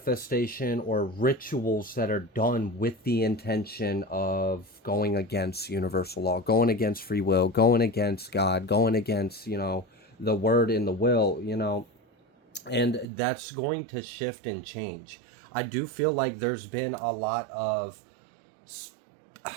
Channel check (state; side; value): drops out; left; at 13.1 s